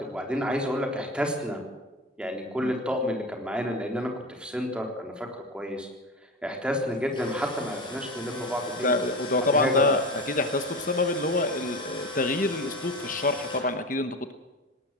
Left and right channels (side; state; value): both; normal; correlation 0.26